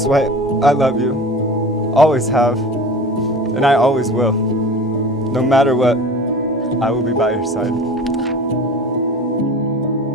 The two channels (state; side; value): normal; both; correlation 0.37